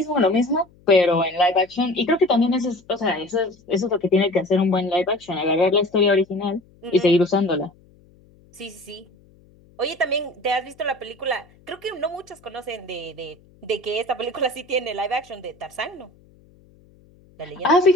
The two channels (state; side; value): noise; left; hum, 29 dB below the sound